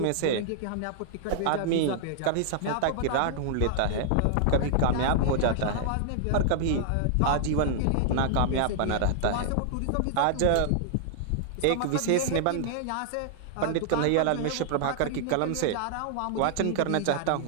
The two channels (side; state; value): both; different; correlation -0.01